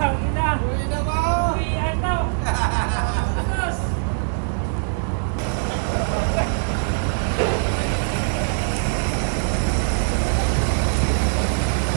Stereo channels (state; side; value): silent; left; digital silence